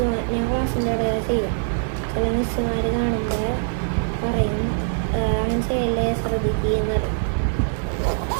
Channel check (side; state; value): left; silent; digital silence